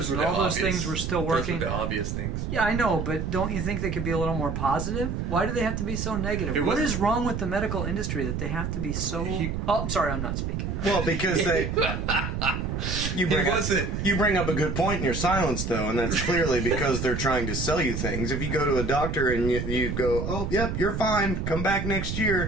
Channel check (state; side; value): noise; right; rumble, 3 dB below the sound